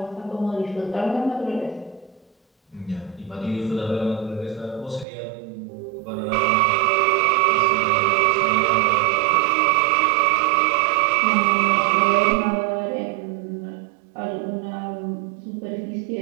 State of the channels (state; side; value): drops out; left; at 5.1 s